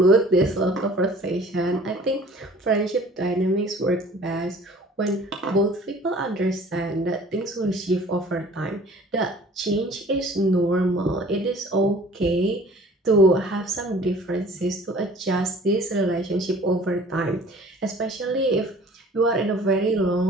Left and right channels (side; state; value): both; normal; correlation 0.50